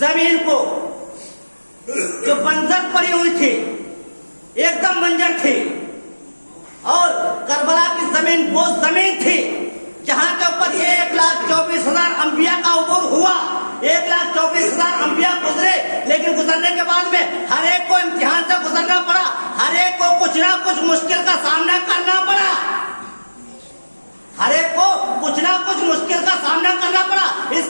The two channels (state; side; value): inverted; both; correlation -1.00